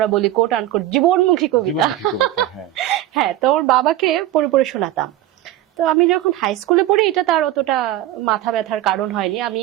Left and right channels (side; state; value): left; quieter; 13.8 dB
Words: বলি কোট আনকোট জীবনমুখী কবিতা। জীবনমুখী কবিতা, হ্যাঁ। হ্যাঁ, তো ওর বাবাকে পড়ে পড়ে শোনাতাম। তো আমি যখন হাই স্কুলে পড়ি এটা তার অতটা মাথা ব্যথার কারণ হয়নি। আমি